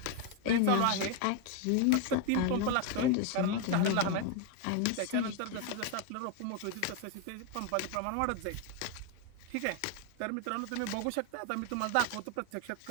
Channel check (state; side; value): different; both; correlation 0.01